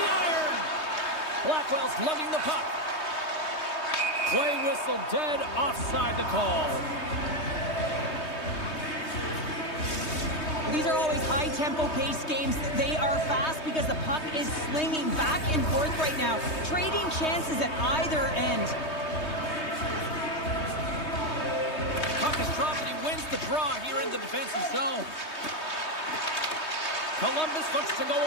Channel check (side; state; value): right; late; 3.2 ms